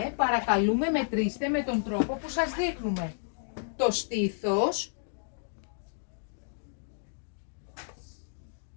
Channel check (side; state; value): right; silent; digital silence